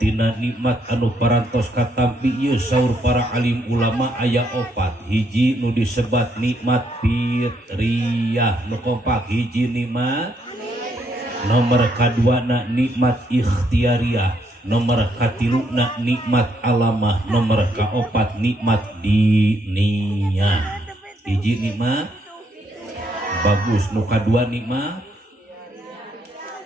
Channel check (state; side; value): normal; both; correlation 0.73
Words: nikmat anu parantos katampi ieu saur para alim ulama aya 4. Hiji nu disebat nikmat fitriyah nu kompak hiji nikmat. Nomor kaduana nikmat ikhtiariyah, nomor katiluna nikmat alamah, nomor kaopat nikmat diniyah. Hiji nikmat bagus, nu kadua nikmat